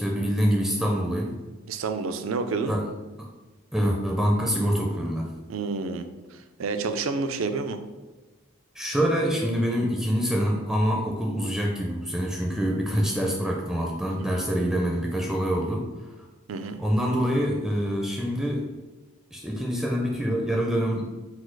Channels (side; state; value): both; normal; correlation 0.76